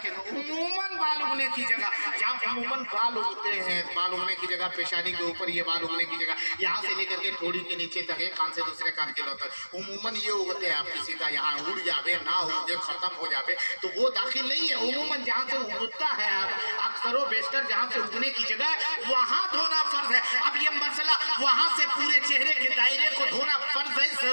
उमूमन बाल उगने की जगह, जहाँ उमूमन बाल उगते हैं, बाल उगने की जगह पेशानी के ऊपर, ये बाल उगने की जगह यहाँ से लेकर के थोड़ी के नीचे तक, एक कान से दूसरे कान के तक उमूमन ये उगते हैं। आप किसी का यहाँ उड़ जावे ना उगे, खत्म हो जावे तो वो दाखिल नहीं है। उमूमन जहाँ से उगता है, अक्सर बेशतर जहाँ से उगने की जगह वहाँ धोना फर्ज है। अब ये मसला वहां से पूरे चेहरे के दायरे को धोना फर्ज है,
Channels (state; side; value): inverted; both; correlation -1.00